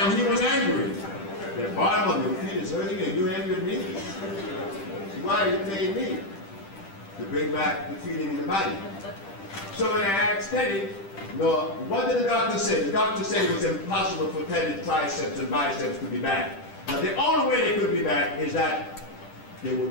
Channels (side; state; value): right; late; 10 ms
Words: he was angry. The bottom of your feet is hurting and you're angry at me? Why are you paying me? To bring back the feeling in the body. So when I asked Teddy, no, what did the doctor say? The doctor said it was impossible for Teddy's triceps and biceps to be back. Now the only way they could be back is that there